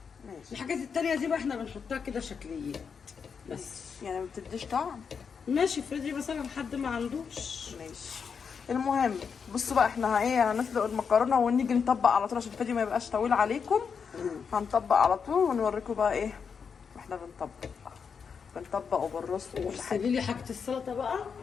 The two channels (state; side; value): quieter; right; 6.2 dB